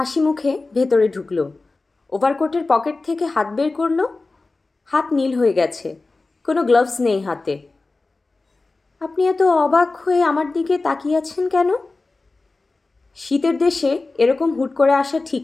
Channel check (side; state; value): right; quieter; 3.5 dB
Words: মুখে ভেতরে ঢুকলো। ওভারকোটের পকেট থেকে হাত বের করলো। হাত নীল হয়ে গেছে, কোনো গ্লাভস নেই হাতে। আপনি এত অবাক হয়ে আমার দিকে তাকিয়ে আছেন কেন? শীতের দেশে এরকম হুট করে আসা ঠিক